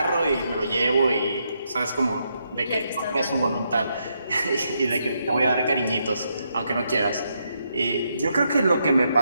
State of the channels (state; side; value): inverted; both; correlation -0.79